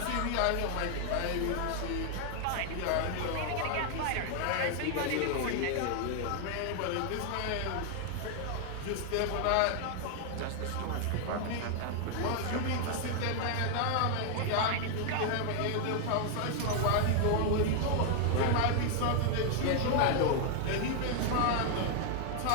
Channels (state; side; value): different; both; correlation 0.00